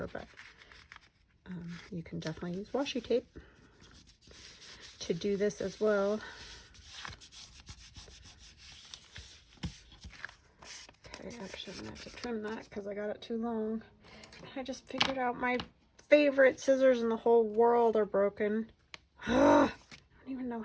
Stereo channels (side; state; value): both; identical; correlation 1.00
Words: but you can definitely use washi tape to do this as well. Okay, actually I'm gonna have to trim that because I got it too long. I just figured out my favorite scissors in the whole world are broken. I don't even know